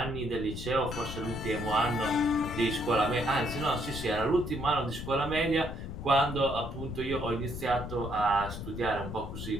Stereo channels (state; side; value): noise; left; rumble, 8 dB below the sound